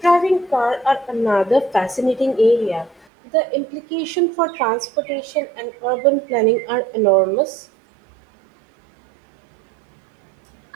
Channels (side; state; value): left; drops out; at 3.1 s